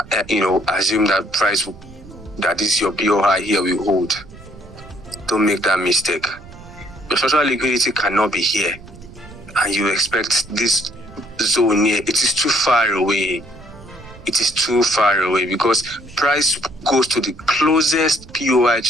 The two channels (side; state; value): right; noise; rumble, 19 dB below the sound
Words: assume that price that is your BOI here will hold. Don't make that mistake. Your structural liquidity cannot be here, and you expect this zone here. It is too far away. It is too far away because price goes to the closest POI